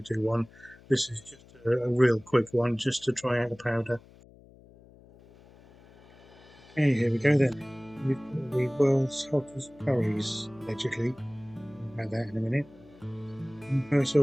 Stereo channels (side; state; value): left; noise; hum, 24 dB below the sound